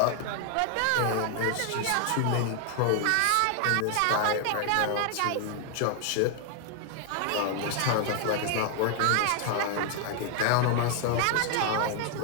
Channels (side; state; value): both; different; correlation 0.00